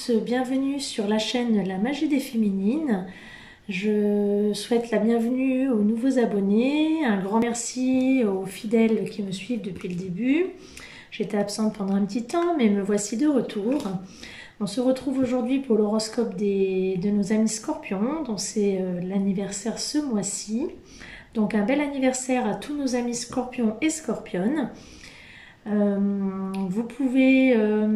bienvenue sur la chaîne La Magie des Féminines. Je souhaite la bienvenue aux nouveaux abonnés, un grand merci aux fidèles qui me suivent depuis le début. J'étais absente pendant un petit temps, mais me voici de retour. On se retrouve aujourd'hui pour l'horoscope de nos amis scorpions, dont c'est l'anniversaire ce mois-ci. Donc un bel anniversaire à tous nos amis scorpions et scorpionnes. Vous pouvez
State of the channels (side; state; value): both; identical; correlation 1.00